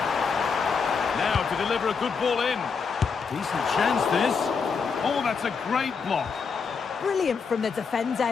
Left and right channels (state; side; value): quieter; right; 5.5 dB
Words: Now to deliver a good ball in. Decent chance this. Oh, that's a great block. Brilliant from the